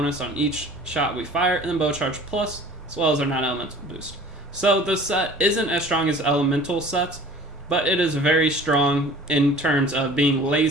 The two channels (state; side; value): normal; both; correlation 0.46